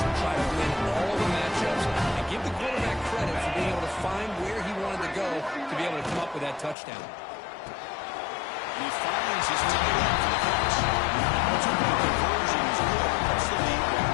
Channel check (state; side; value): drops out; right; at 6.8 s